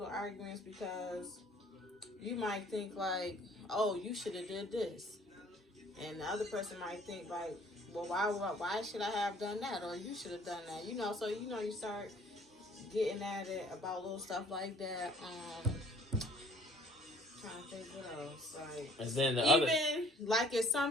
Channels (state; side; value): normal; both; correlation 0.56